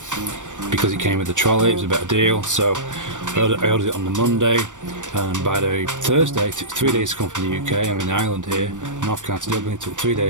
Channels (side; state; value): left; late; 0.86 ms